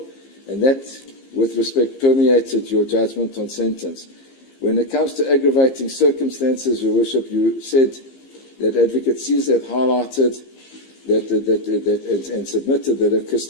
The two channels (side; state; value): right; late; 15 ms